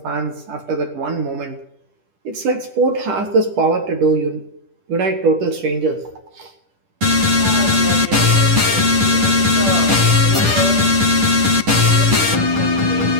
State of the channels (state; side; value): late; left; 10 ms